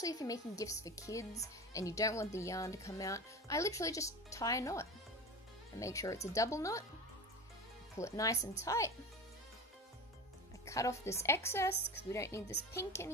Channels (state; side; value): normal; both; correlation 0.29